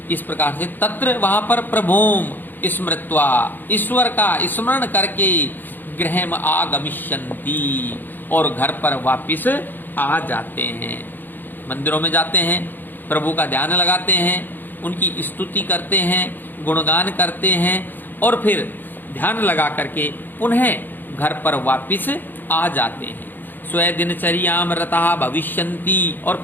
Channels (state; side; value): late; right; 0.091 ms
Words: इस प्रकार से तत्र वहां पर प्रभुम स्मृत्वा, ईश्वर का स्मरण करके, गृहम आगमिष्यन्ति और घर पर वापिस आ जाते हैं। मंदिरों में जाते हैं, प्रभु का ध्यान लगाते हैं, उनकी स्तुति करते हैं, गुणगान करते हैं और फिर ध्यान लगा करके पुनः घर पर वापिस आ जाते हैं। स्वे दिनचर्याम रतः भविष्यन्ति, और